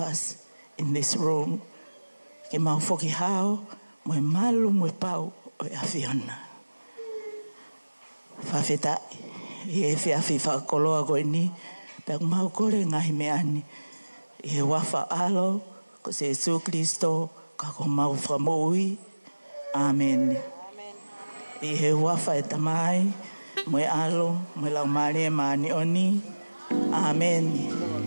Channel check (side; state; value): both; inverted; correlation -1.00